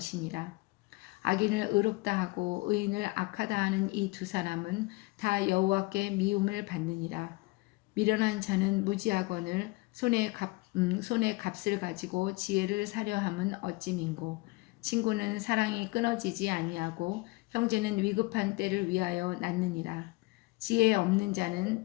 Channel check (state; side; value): quieter; right; 23.3 dB